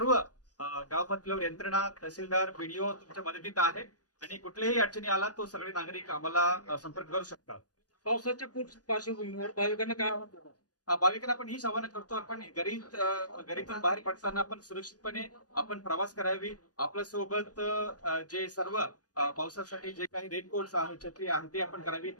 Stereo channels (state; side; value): late; right; 0.68 ms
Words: गाव पातळीवर यंत्रणा, तहसीलदार, बीडीओ तुमच्या मदतीत आहे आणि कुठल्याही अडचणी आला तो सगळे नागरिक आम्हाला संपर्क करू शकतात. पावसाच्या पार्श्वभूमीवर भाविकांना काय आवाहन करणार? भाविकांना आपण ही आवाहन करतो, आपण घरीतून बाहेर पडताना आपण सुरक्षितपणे आपण प्रवास करावी. आपल्या सोबत जे सर्व पावसासाठी जे काही रेनकोट्स आहे, छत्री आहे ते आपण करावी.